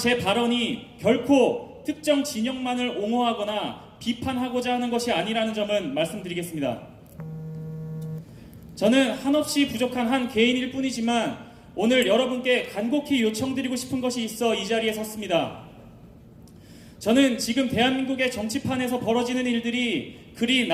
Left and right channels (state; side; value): identical; both; correlation 1.00